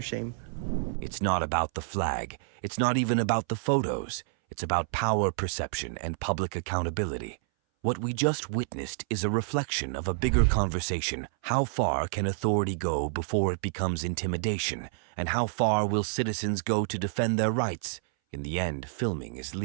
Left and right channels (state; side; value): silent; left; 59 dB below the other